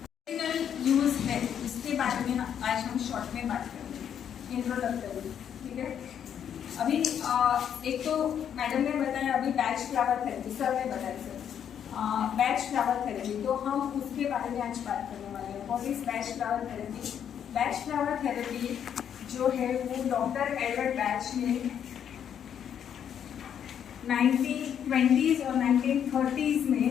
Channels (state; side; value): quieter; right; 8.8 dB